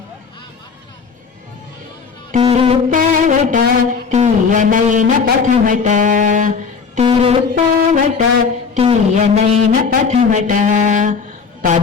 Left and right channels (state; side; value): quieter; right; 5.5 dB